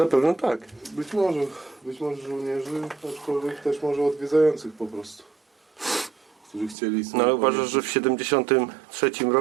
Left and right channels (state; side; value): drops out; left; at 6.8 s